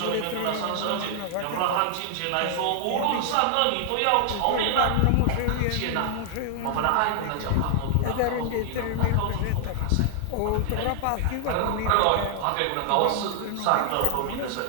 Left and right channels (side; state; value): both; different; correlation -0.01